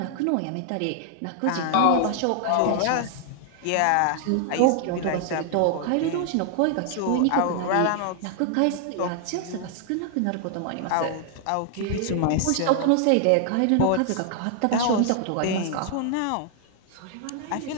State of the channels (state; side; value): different; both; correlation 0.00